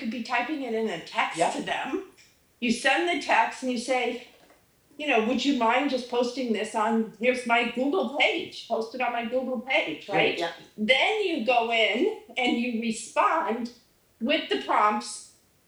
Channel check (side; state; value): both; identical; correlation 1.00